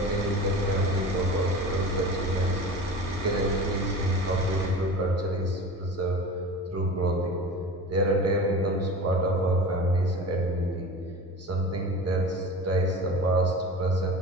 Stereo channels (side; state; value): both; normal; correlation 0.34